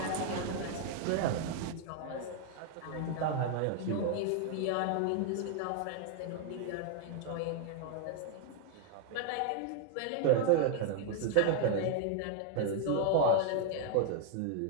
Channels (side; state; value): both; different; correlation 0.00